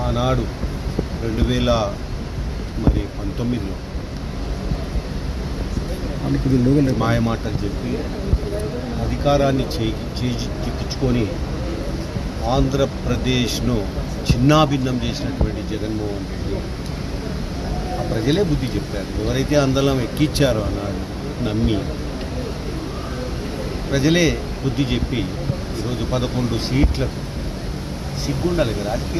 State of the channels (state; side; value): identical; both; correlation 1.00